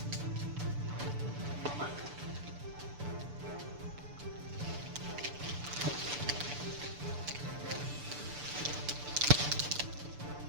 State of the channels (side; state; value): left; late; 6.9 ms